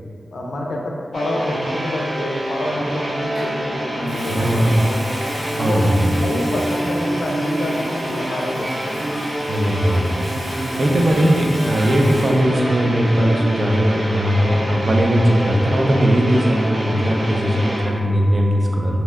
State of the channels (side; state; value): both; normal; correlation 0.94